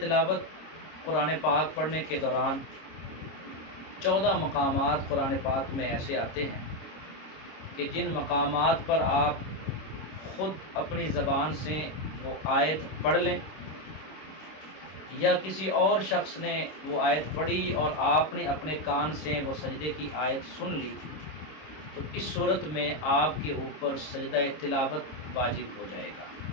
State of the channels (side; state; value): right; late; 26 ms